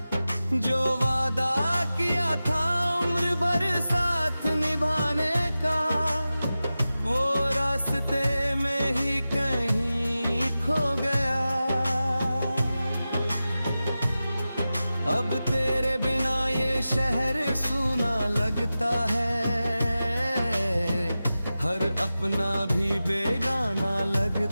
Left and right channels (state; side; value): inverted; both; correlation -0.94